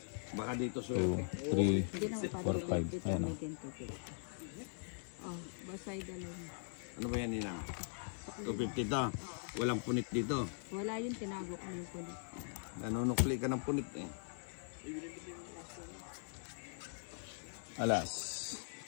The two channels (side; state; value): right; silent; 50 dB below the other